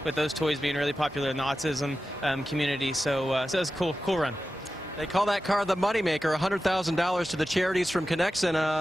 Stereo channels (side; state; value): both; normal; correlation 0.93